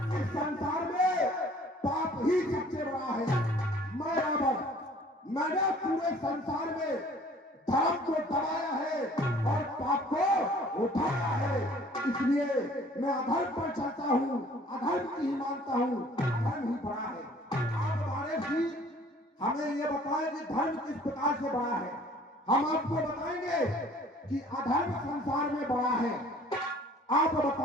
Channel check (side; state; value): both; normal; correlation 0.53